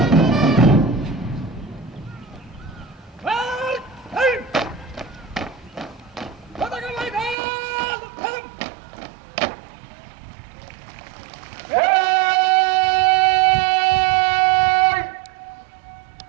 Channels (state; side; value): drops out; left; at 7.4 s